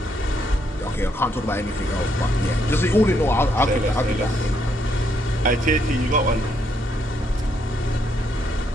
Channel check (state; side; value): normal; both; correlation 0.74